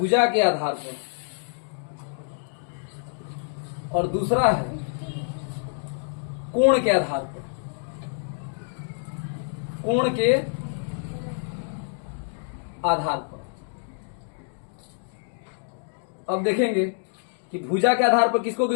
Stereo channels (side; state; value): right; silent; digital silence